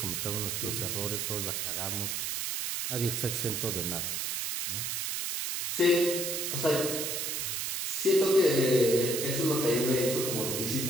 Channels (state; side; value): noise; right; hiss, 1 dB below the sound